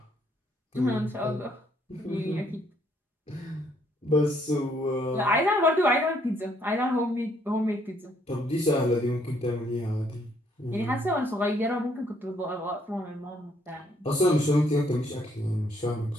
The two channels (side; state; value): both; normal; correlation 0.69